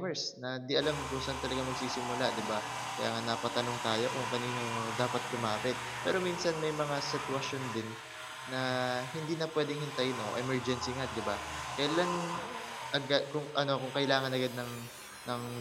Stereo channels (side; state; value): both; identical; correlation 1.00